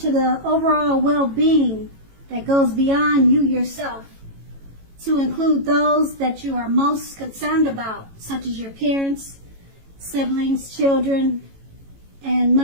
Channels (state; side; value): late; left; 18 ms